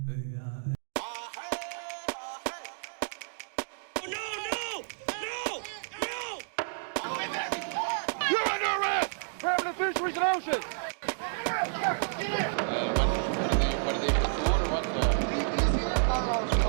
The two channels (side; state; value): left; silent; digital silence